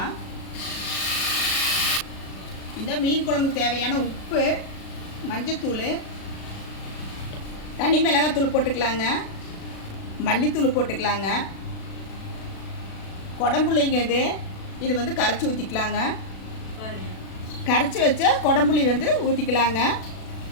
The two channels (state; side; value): late; right; 36 ms